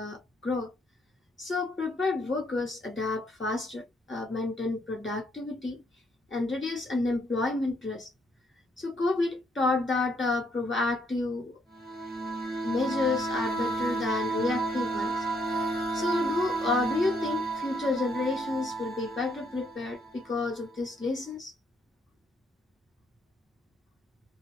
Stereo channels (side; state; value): both; normal; correlation 0.72